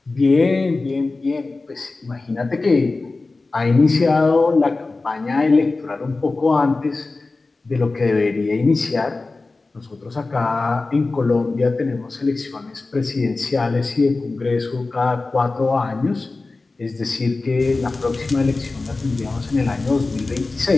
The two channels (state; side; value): quieter; right; 3.5 dB